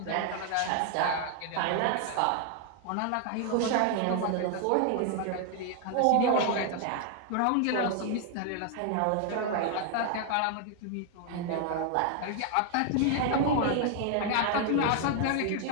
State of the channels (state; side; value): different; both; correlation 0.00